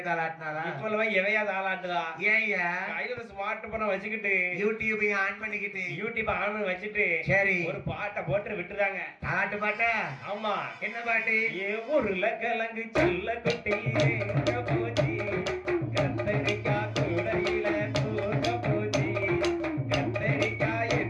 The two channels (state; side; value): identical; both; correlation 1.00